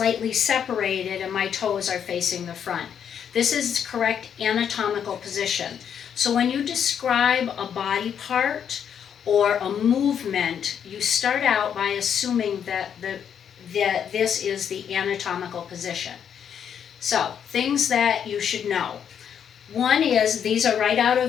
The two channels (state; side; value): quieter; right; 8.3 dB